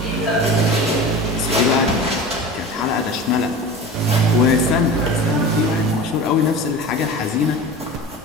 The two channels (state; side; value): normal; both; correlation 0.33